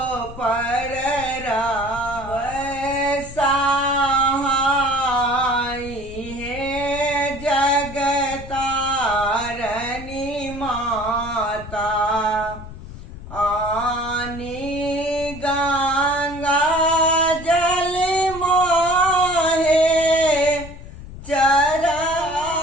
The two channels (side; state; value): left; noise; rumble, 14 dB below the sound